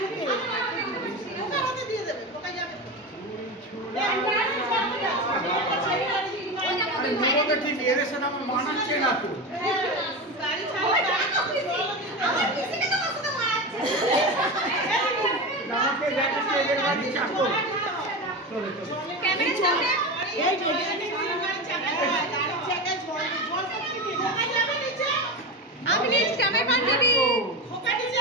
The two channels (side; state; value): both; normal; correlation 0.22